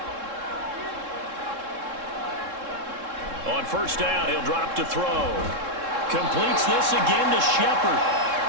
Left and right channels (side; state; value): left; late; 3.7 ms